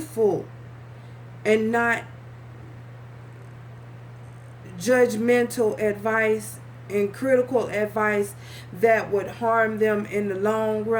and not judgmental advice and critical advice that would harm them in the long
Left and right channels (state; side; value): identical; both; correlation 1.00